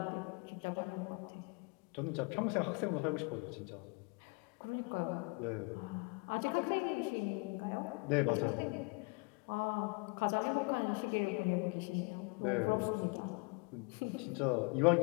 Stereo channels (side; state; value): right; quieter; 32.5 dB